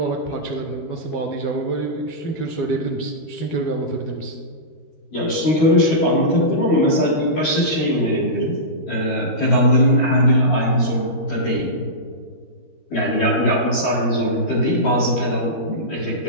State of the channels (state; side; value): late; right; 12 ms